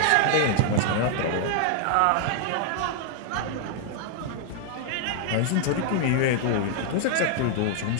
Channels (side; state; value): both; different; correlation 0.00